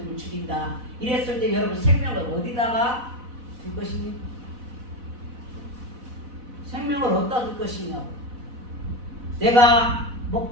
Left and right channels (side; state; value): left; late; 4.0 ms